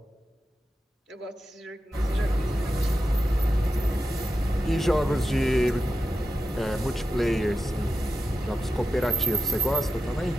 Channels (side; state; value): both; normal; correlation 0.90